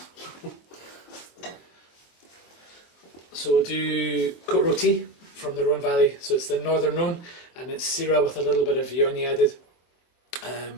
So we'll do Côte Rôtie from the Rhone Valley. So it's the northern Rhone, and it's Syrah with a little bit of Viognier added.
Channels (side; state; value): right; late; 23 ms